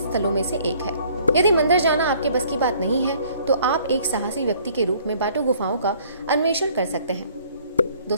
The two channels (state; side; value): inverted; both; correlation -0.58